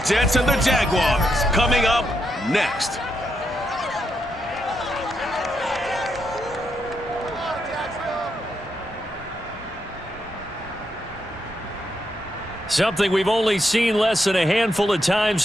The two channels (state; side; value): normal; both; correlation 0.81